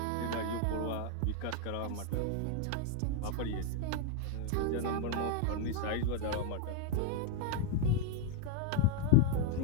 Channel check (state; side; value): different; both; correlation 0.01